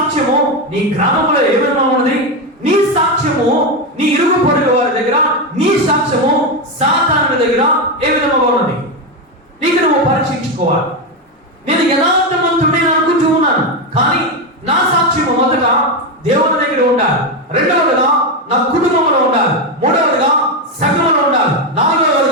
నీ గ్రామంలో ఏ విధంగా ఉన్నది? నీ సాక్ష్యము నీ ఇరుగు పొరుగు వారి దగ్గర, నీ సాక్ష్యము సాతానుడి దగ్గర ఏ విధంగా ఉన్నది? నీకు నువ్వు పరీక్షించుకోవాలి. నేను యథార్థవంతుడిని అనుకుంటూ ఉన్నాను, కానీ నా సాక్ష్యము మొదట దేవుని దగ్గర ఉండాలి, రెండవదిగా నా కుటుంబంలో ఉండాలి, మూడవదిగా సంఘంలో ఉండాలి,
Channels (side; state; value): both; normal; correlation 0.10